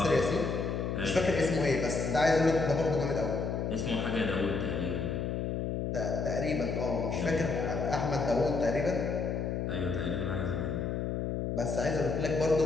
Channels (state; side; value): noise; left; hum, 1 dB below the sound